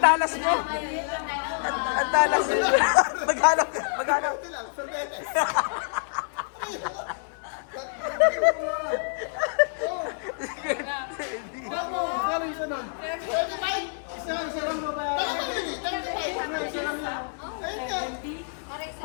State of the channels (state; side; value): silent; right; digital silence